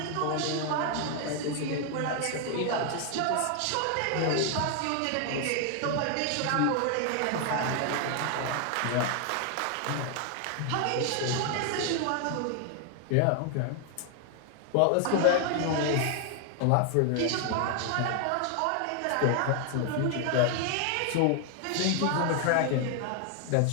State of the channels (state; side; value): different; both; correlation 0.00